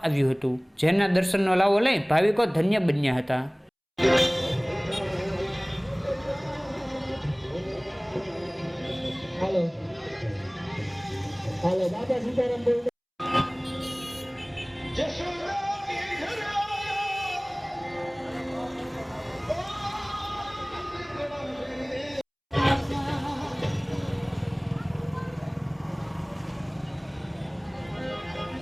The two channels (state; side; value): identical; both; correlation 1.00